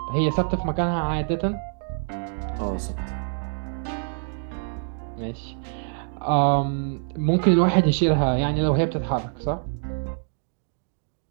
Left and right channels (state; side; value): silent; left; 61 dB below the other